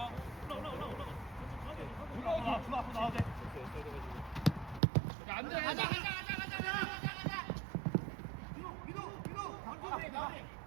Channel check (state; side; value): drops out; left; at 4.8 s